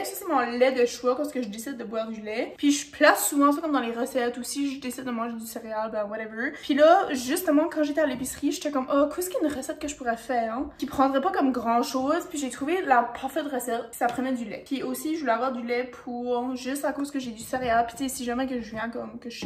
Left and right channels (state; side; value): identical; both; correlation 1.00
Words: Ça, c'est mon lait de choix parce que je décide de boire du lait. Puis je place souvent ça comme dans les recettes aussi. Je décide de manger du céréal, ben whatever. Puis là, justement, quand j'étais à l'épicerie, j'étais comme, oh, qu'est-ce qu'il y a une recette que je pourrais faire, hein? Qui prendrait pas comme grand chose. Puis j'ai trouvé la parfaite recette. Puis ça prenait du lait. Puis aussi, je voulais avoir du lait pour juste à cause que j'ai du céréal. Puis tu sais, si jamais que je viens comme que je